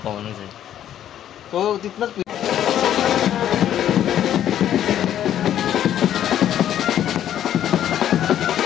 म्हणून हो तिथनच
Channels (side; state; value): right; quieter; 10.9 dB